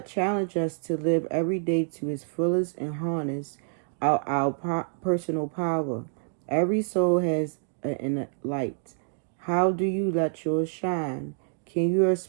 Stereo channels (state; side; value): silent; left; digital silence